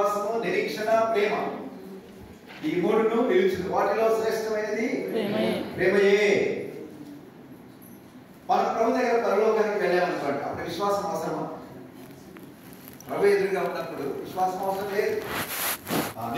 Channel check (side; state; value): both; identical; correlation 1.00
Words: నిరీక్షణ, ప్రేమ, ఈ 3ను నిలిచింది. వాటిలో శ్రేష్టమైనది ప్రేమయే. మనం ప్రభు దగ్గర పరలోకానికి వెళ్ళామనుకోండి, అప్పుడు విశ్వాసం అవసరమా? ప్రభు ఎదురుగా ఉన్నప్పుడు విశ్వాసం అవసరం లేదు.